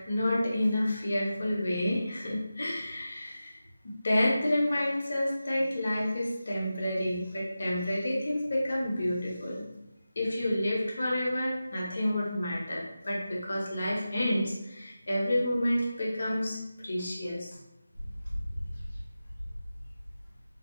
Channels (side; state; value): both; inverted; correlation -0.93